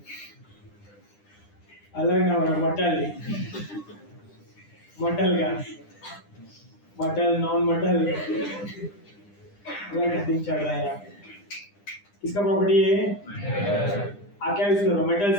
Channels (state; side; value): late; right; 9.9 ms